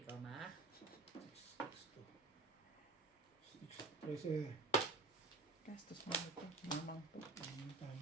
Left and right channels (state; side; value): quieter; left; 3.7 dB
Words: goma. 13. Gastos mo ito. Mamang po. Ang